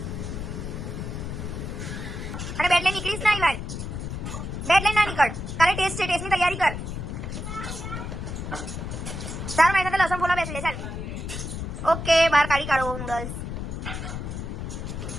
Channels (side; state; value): left; noise; rumble, 6 dB below the sound